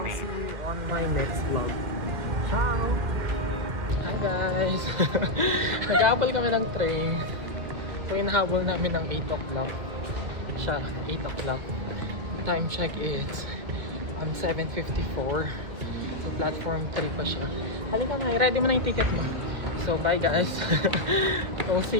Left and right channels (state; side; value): late; left; 1.9 ms